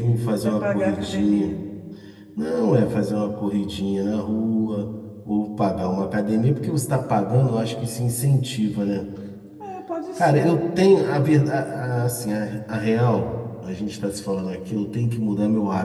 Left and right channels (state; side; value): identical; both; correlation 1.00